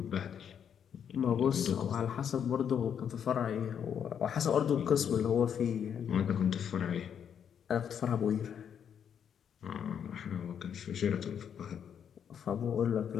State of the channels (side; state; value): right; quieter; 8.2 dB